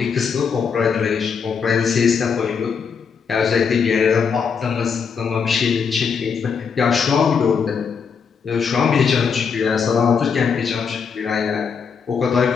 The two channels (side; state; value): right; quieter; 6.2 dB